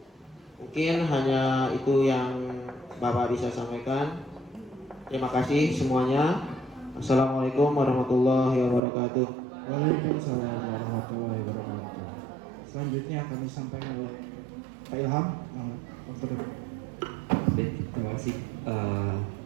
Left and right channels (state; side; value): drops out; left; at 8.8 s